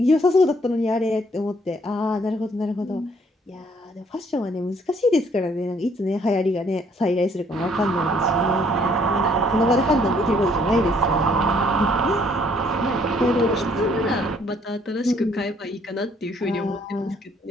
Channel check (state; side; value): normal; both; correlation 0.64